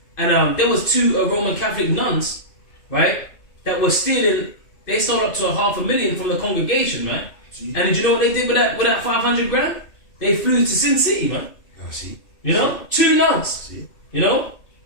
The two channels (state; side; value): late; right; 2.6 ms